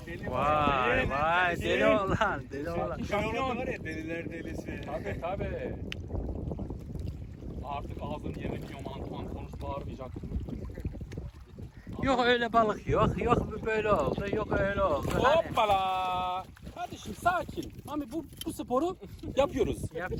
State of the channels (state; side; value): identical; both; correlation 1.00